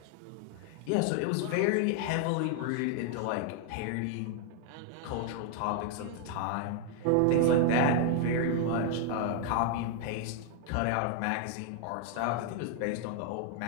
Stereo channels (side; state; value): both; different; correlation 0.00